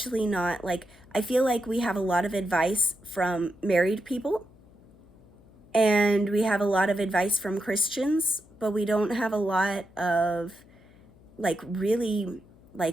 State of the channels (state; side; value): noise; left; hum, 27 dB below the sound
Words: not like, I feel like we have a lot of advice from married people and we have a lot of advice from Christians, but we don't have a lot of really